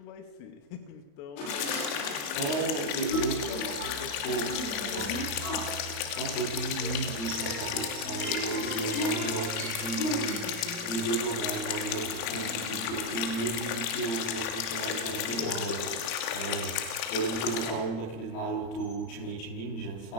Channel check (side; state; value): right; late; 35 ms